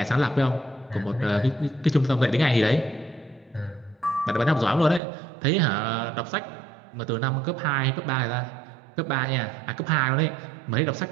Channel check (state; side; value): drops out; left; at 5.0 s